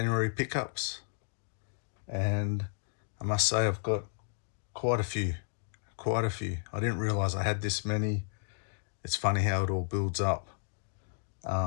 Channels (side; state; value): right; silent; digital silence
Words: pickups, and I must say I've got quite a few. I didn't realize I had this many. It's funny how it all builds up.